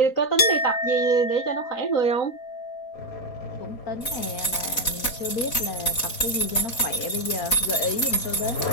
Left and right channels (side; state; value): right; late; 4.0 ms